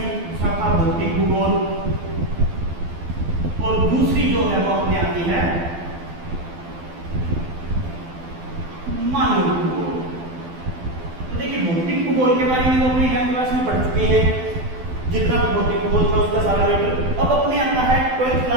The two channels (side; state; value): left; late; 12 ms